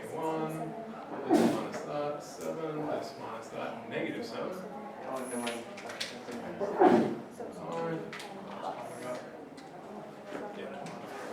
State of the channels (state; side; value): identical; both; correlation 1.00